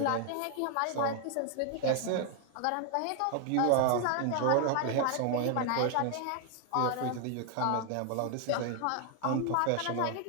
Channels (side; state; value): both; different; correlation 0.00